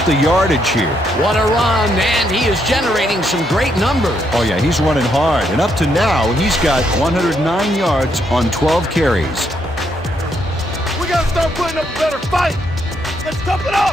the yardage here. What a run, and he is generating some great numbers. Oh yeah, he's running hard, and up to now, he's got 109 yards on 12 carries. We gotta start putting up a better fight. Let's tough it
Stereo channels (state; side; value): normal; both; correlation 0.75